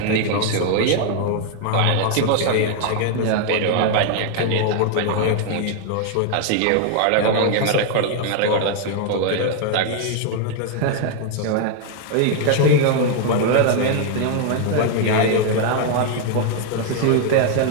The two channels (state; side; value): different; both; correlation 0.00